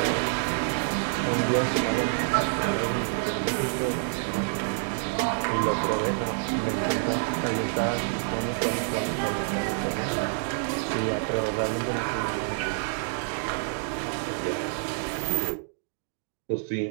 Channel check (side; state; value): left; silent; digital silence